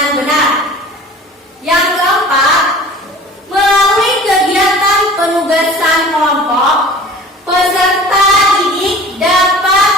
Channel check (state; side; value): normal; both; correlation 0.43